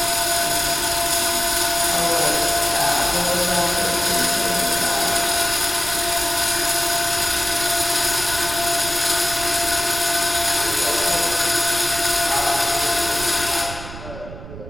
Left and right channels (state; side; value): noise; right; rumble, 12 dB below the sound